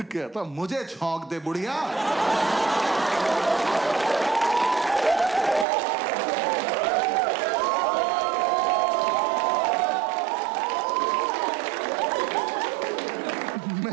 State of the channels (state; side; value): drops out; left; at 5.7 s